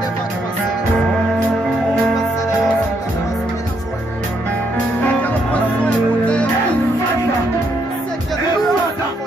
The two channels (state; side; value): normal; both; correlation 0.75